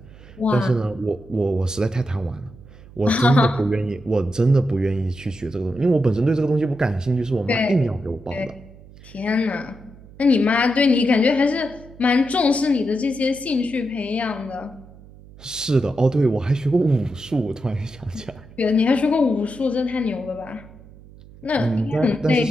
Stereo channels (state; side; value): noise; right; hum, 21 dB below the sound